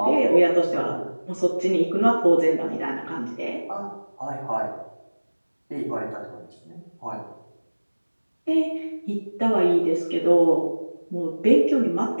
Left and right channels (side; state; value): both; inverted; correlation -1.00